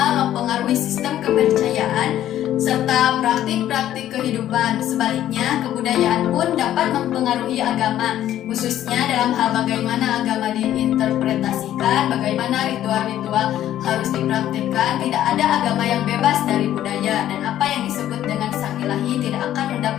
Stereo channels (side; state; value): right; quieter; 12.2 dB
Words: mempengaruhi sistem kepercayaan serta praktik-praktik kehidupan. Sebaliknya, kebudayaan pun dapat mempengaruhi agama, khususnya dalam hal bagaimana agama diinterpretasikan, bagaimana ritual-ritual harus dipraktikkan. Tidak ada agama yang bebas dari budaya, dan apa yang disebut dengan sang ilahi tidak akan